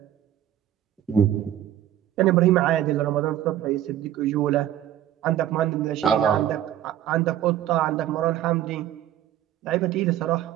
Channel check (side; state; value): left; quieter; 11.8 dB